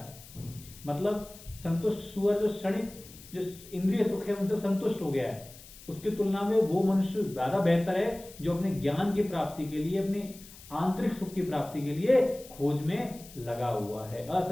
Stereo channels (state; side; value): noise; left; hiss, 19 dB below the sound